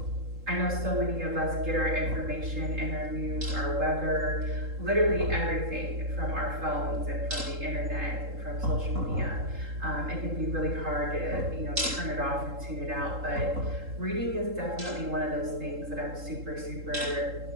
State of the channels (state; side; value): late; left; 3.8 ms